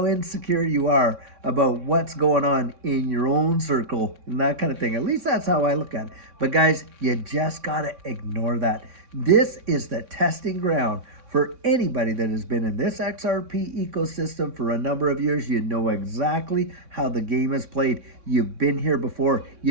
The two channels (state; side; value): late; left; 3.6 ms